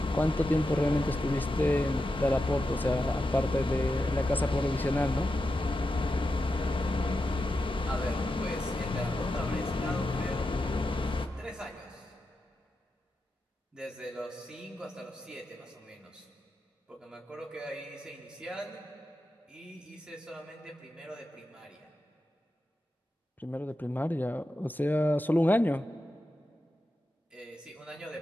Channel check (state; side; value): normal; both; correlation 0.89